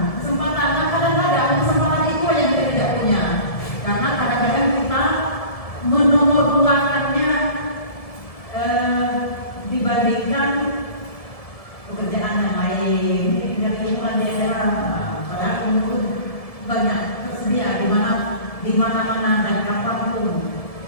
Nah, kadang-kadang kesempatan itu yang kita tidak punya. Karena kadang-kadang kita menomor-duakannya dibandingkan pekerjaan yang lain, dari lingkungan daerah. Padahal ilmu banyak tersedia di mana-mana dan kapanpun.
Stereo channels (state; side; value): late; right; 1.7 ms